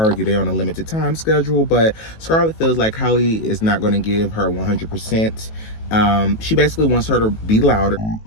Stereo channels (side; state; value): right; late; 18 ms